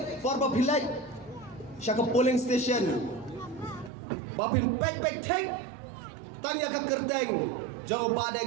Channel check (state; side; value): drops out; left; at 3.9 s